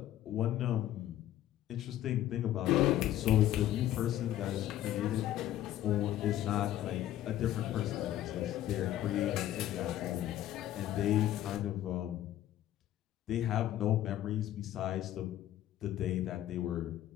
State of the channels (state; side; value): quieter; right; 12.8 dB